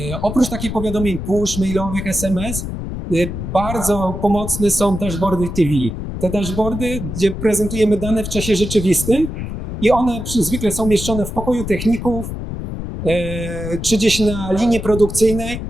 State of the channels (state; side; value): noise; left; rumble, 6 dB below the sound